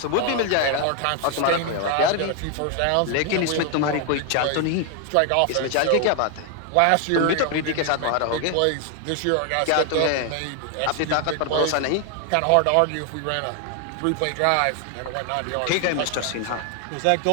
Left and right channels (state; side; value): different; both; correlation 0.00